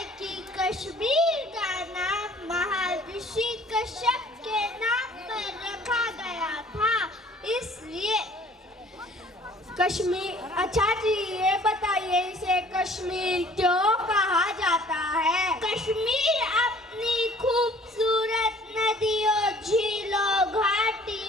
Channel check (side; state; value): both; normal; correlation 0.54